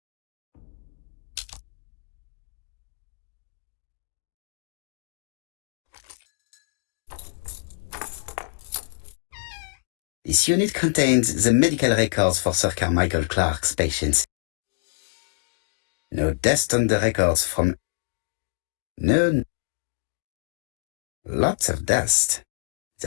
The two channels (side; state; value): right; silent; digital silence